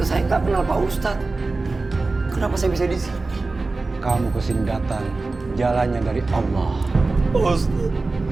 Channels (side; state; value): left; quieter; 3.5 dB